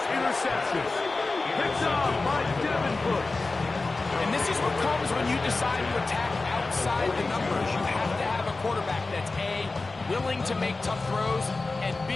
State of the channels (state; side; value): quieter; right; 3.5 dB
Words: interception. Picked off by Devin Bush. And this is what comes when you decide to attack outside the numbers. You have to have a quarterback that's A, willing to make tough throws, and B,